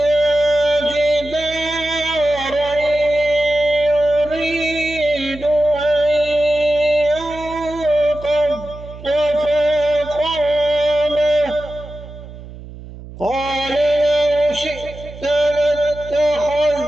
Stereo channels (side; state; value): right; noise; hum, 15 dB below the sound